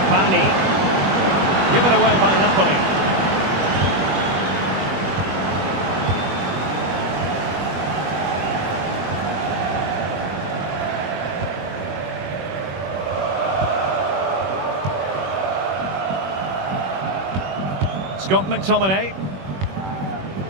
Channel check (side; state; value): left; late; 21 ms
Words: Given away by Napoli. Scott McTominay.